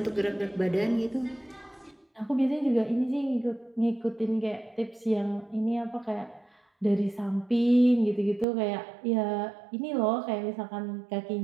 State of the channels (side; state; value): left; drops out; at 8.5 s